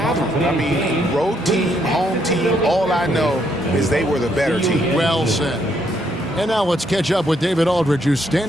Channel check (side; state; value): both; normal; correlation 0.73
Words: them. I mean, road team, home team, all I know is they were the better team. Well said. And now let's catch up with David Aldridge, who's